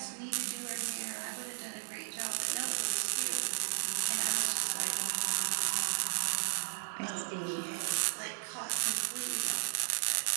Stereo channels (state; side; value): silent; left; 55 dB below the other